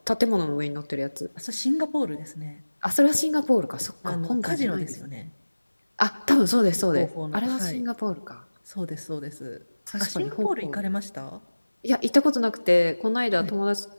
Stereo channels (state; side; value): inverted; both; correlation -1.00